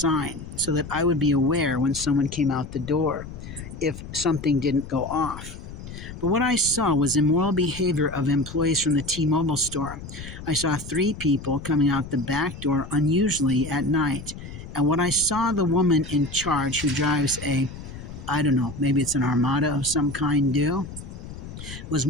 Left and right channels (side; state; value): left; noise; rumble, 12 dB below the sound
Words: so that I would be aware when someone came out the door if something didn't go off. But what I saw was immoral behavior of employees from the T-Mobile store. I saw 3 people coming out the back door unusually at night. And what I saw the woman in charge who drives I don't know, maybe it's an Armada of some kind do, was